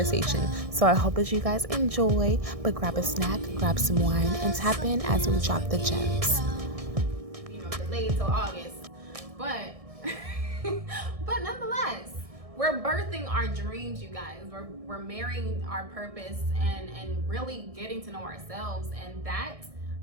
So I hope that you guys enjoy, but grab a snack, grab some wine, and tap in as we drop the gems. Delayed till August, but nonetheless, we're birthing our dreams, you guys. We're marrying our purpose and really getting to know ourselves, and that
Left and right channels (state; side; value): late; left; 1.6 ms